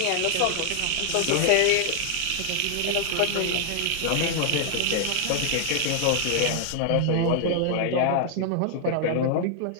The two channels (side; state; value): both; different; correlation 0.00